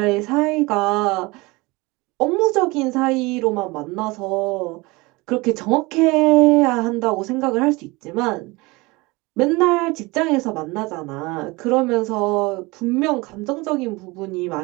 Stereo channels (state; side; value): quieter; left; 23.8 dB